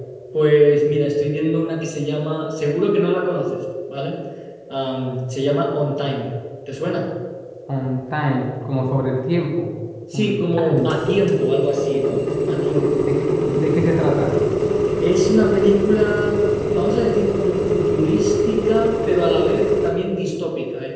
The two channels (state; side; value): identical; both; correlation 1.00